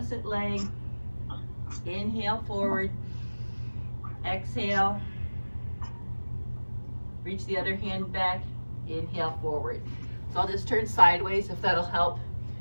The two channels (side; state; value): both; inverted; correlation -1.00